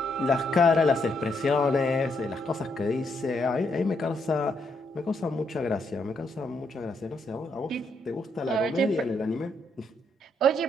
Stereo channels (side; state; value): both; normal; correlation 0.76